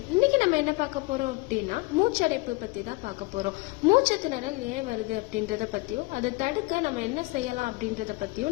இன்னைக்கு நம்ம என்ன பார்க்க போறோம் அப்படின்னா மூச்சடைப்பு பத்தி தான் பார்க்க போறோம். மூச்சு திணறல் ஏன் வருது அப்படின்றத பத்தியும் அதை தடுக்க நம்ம என்ன செய்யலாம் அப்படின்றத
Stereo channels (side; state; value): right; quieter; 24.0 dB